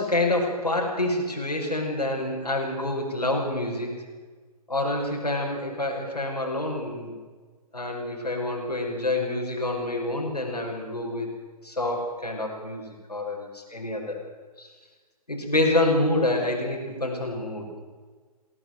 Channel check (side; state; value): both; normal; correlation -0.10